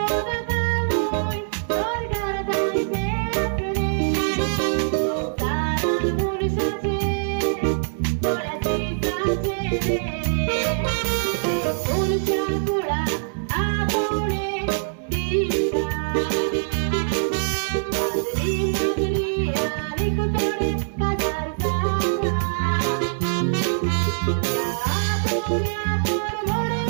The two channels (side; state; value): left; silent; 63 dB below the other